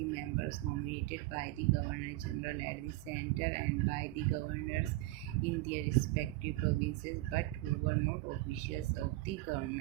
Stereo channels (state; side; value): quieter; left; 18.2 dB